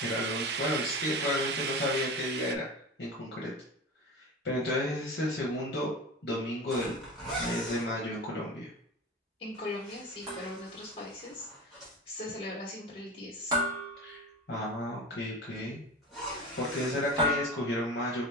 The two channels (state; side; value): normal; both; correlation 0.29